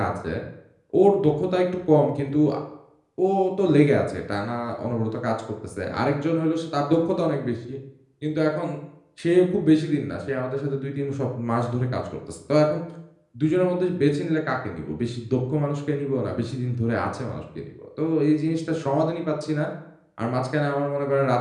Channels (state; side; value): identical; both; correlation 1.00